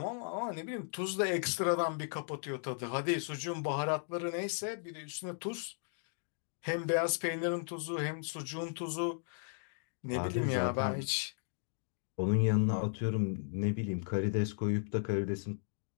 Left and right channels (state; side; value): silent; right; digital silence